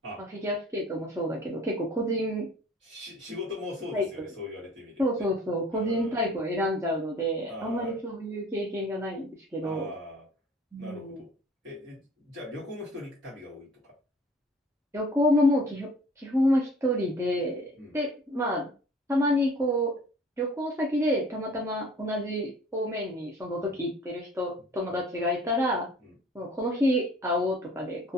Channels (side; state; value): both; normal; correlation 0.51